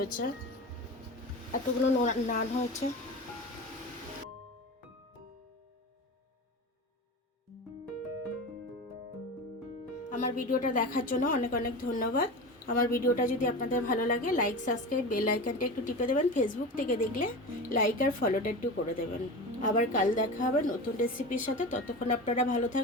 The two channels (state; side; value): normal; both; correlation 0.28